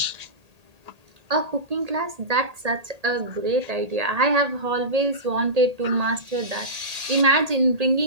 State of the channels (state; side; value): late; left; 1.8 ms